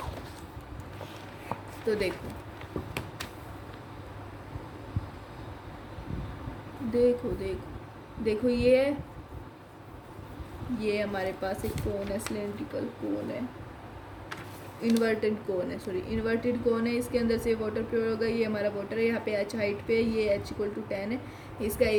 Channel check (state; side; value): identical; both; correlation 1.00